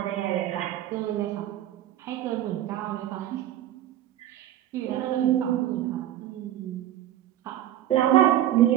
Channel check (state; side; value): quieter; left; 12.4 dB